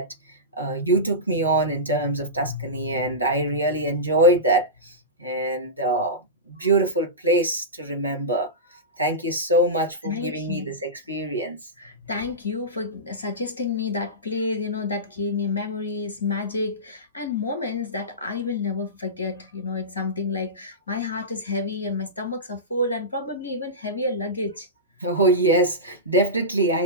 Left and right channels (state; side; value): normal; both; correlation -0.18